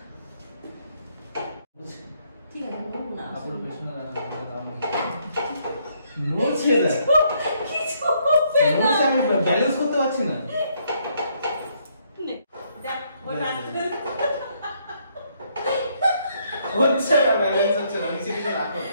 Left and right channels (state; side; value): inverted; both; correlation -0.71